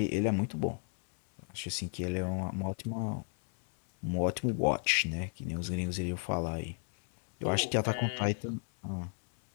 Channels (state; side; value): silent; right; 54 dB below the other